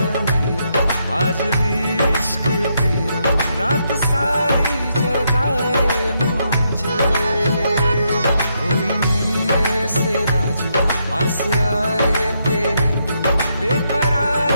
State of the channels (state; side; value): inverted; both; correlation -0.78